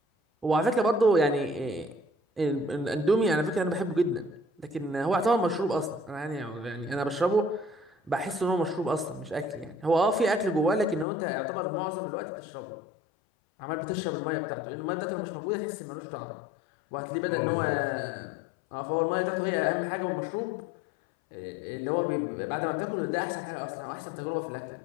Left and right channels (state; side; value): drops out; right; at 11.1 s